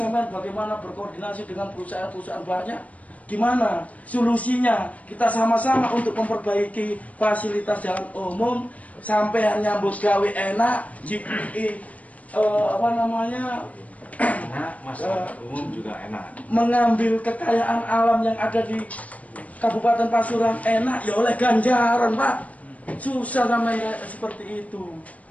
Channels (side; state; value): right; late; 0.069 ms